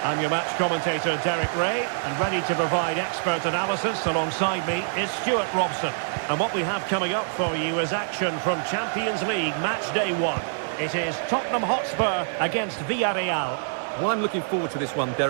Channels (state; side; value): silent; left; 59 dB below the other